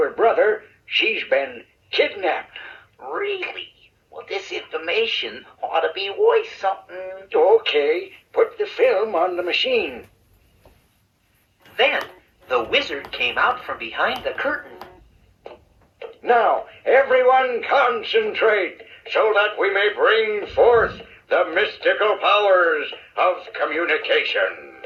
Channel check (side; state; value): both; identical; correlation 1.00